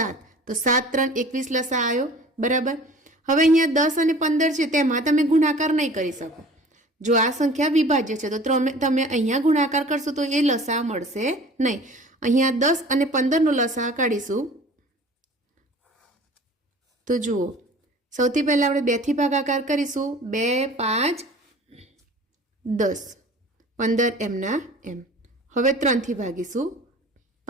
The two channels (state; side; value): normal; both; correlation 0.45